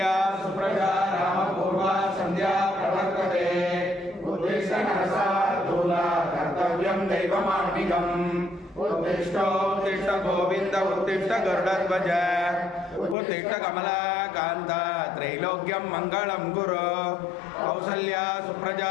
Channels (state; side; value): drops out; right; at 13.2 s